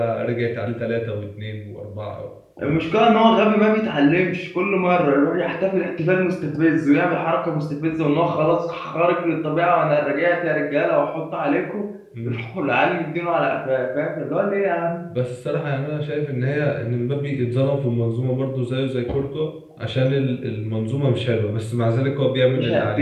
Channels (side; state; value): both; identical; correlation 1.00